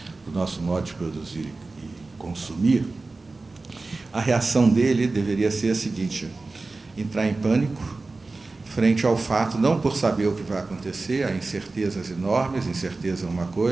do nosso modo de produzir e consumir, a reação dele deveria ser a seguinte: entrar em pânico frente ao fato, não por saber o que vai acontecer, há incertezas enormes, incerteza é uma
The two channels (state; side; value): quieter; left; 3.5 dB